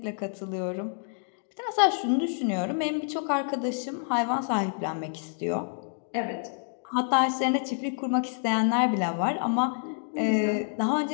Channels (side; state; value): right; silent; digital silence